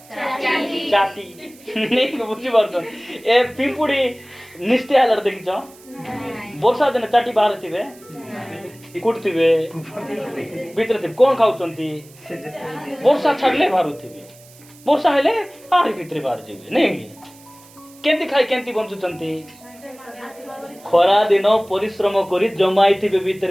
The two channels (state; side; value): noise; right; hiss, 24 dB below the sound